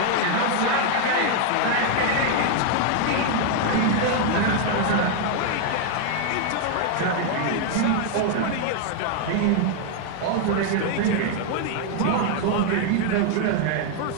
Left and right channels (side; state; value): both; different; correlation 0.00